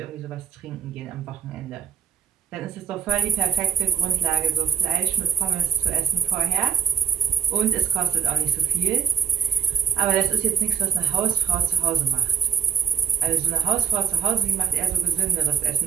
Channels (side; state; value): left; quieter; 7.1 dB